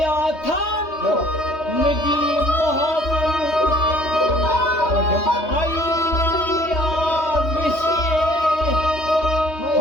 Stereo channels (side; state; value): right; late; 3.2 ms